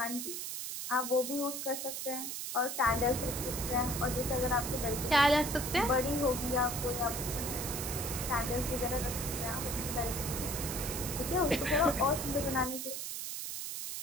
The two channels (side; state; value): right; noise; hiss, 5 dB below the sound